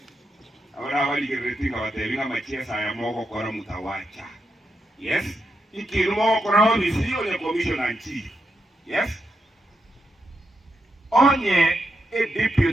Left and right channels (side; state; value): both; normal; correlation 0.84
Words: ahora waligeretinga watebinga machiesa ya moko kora mutawacha. Yes, ikiru moko kora obisi onye commissioner chief. Yes, onye